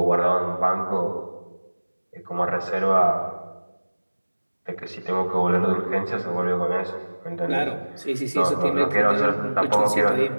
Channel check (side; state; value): both; inverted; correlation -1.00